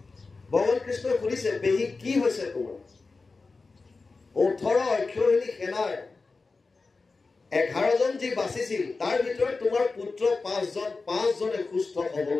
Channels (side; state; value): right; quieter; 4.0 dB